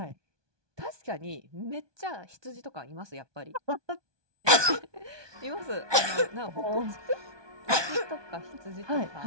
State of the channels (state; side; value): late; left; 1.2 ms